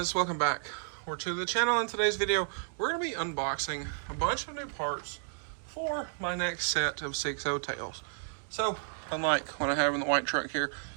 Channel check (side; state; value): left; silent; digital silence